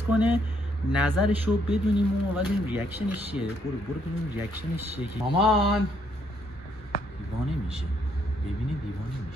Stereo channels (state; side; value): normal; both; correlation 0.71